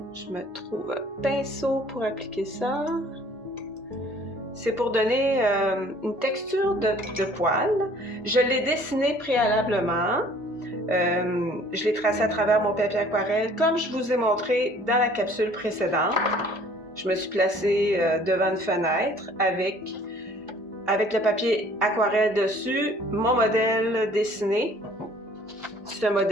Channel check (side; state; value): both; normal; correlation 0.55